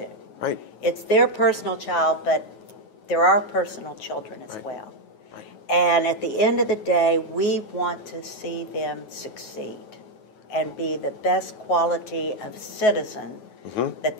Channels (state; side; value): late; right; 9.3 ms